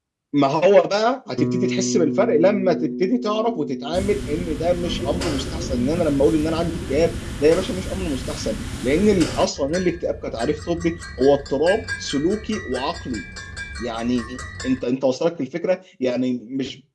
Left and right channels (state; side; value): identical; both; correlation 1.00